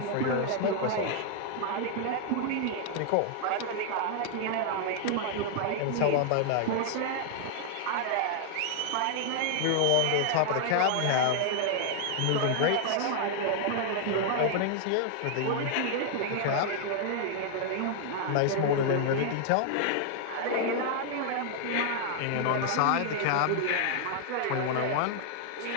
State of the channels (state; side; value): different; both; correlation 0.00